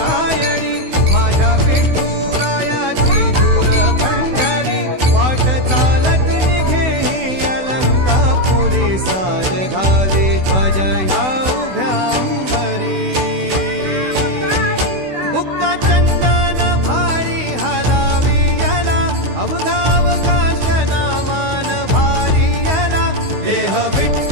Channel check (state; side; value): late; left; 16 ms